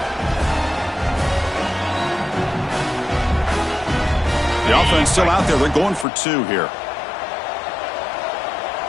The offense still out there. They're going for 2 here.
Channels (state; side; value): drops out; right; at 6.1 s